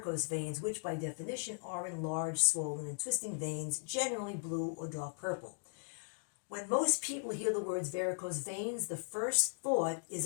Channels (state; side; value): silent; right; digital silence